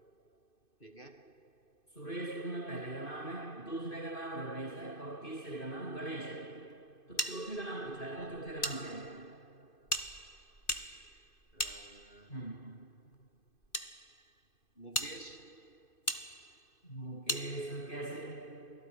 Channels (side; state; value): right; late; 2.5 ms